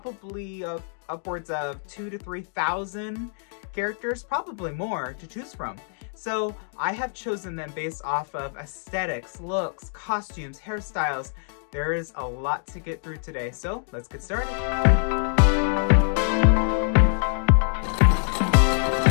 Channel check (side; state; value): right; silent; digital silence